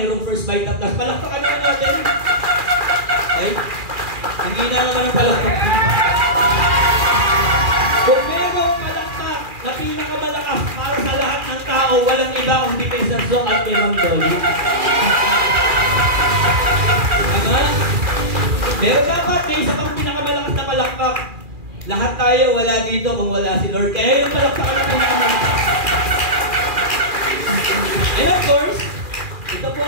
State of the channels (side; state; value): left; late; 2.4 ms